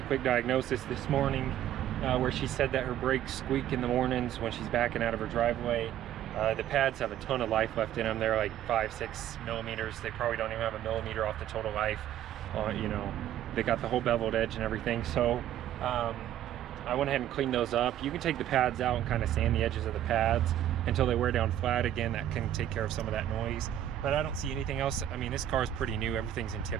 quick diagnosis this morning where she said that her brakes squeak in the mornings when she's backing out of her driveway. The pads have a ton of life left in them. They're like 5-6 millimeters. They probably don't even have a millimeter off the total life. You know, they got the whole beveled edge and everything. So I went ahead and cleaned those up. You can take the pads out and kind of sand the edges of the pads until they wear down flat again. That can take care of some of that noise, but I don't see anything else. I mean, this car is pretty new. Everything's in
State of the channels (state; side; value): quieter; left; 11.6 dB